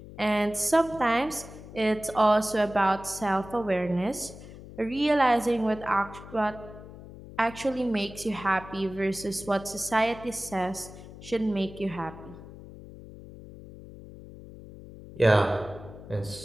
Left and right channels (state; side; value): noise; left; hum, 16 dB below the sound